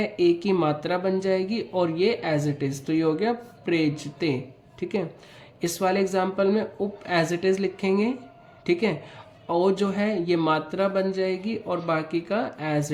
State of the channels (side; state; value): both; identical; correlation 1.00